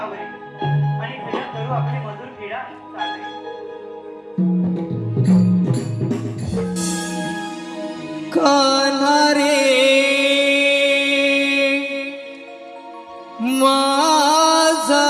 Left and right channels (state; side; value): identical; both; correlation 1.00